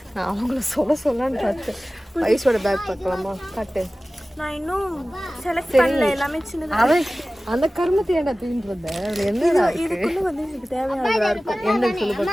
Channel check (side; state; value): both; normal; correlation 0.97